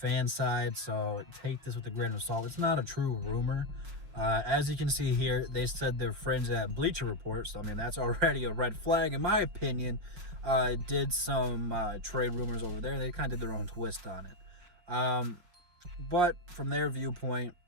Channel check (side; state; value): left; late; 5.4 ms